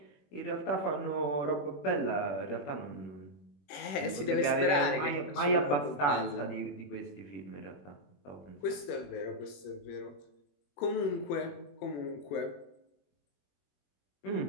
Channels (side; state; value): right; late; 21 ms